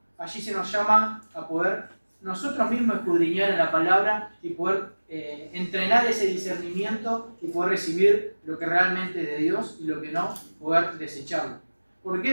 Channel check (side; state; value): both; inverted; correlation -1.00